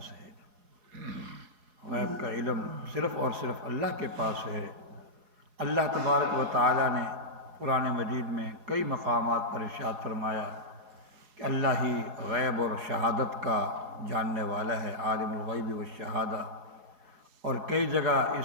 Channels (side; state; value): left; late; 4.7 ms